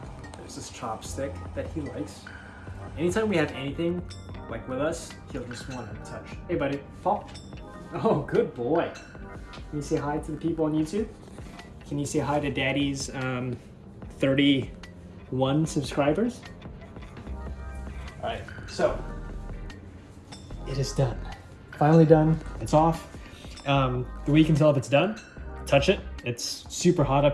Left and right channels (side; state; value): both; identical; correlation 1.00